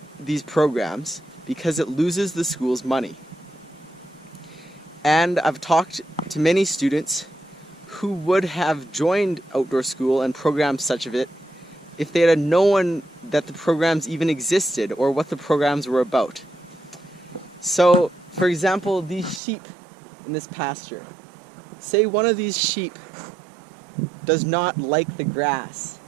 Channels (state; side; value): drops out; left; at 19.4 s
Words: these programs because it loses the school's money. And I've talked to many students who would have joined outdoor school and programs such of it if they had known that the programs even existed or what the programs were about. So, for example, these sheep in this pasture. Say one of these sheep does not like the grass